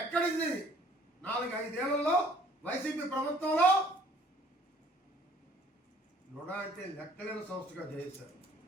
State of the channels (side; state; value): both; normal; correlation 0.57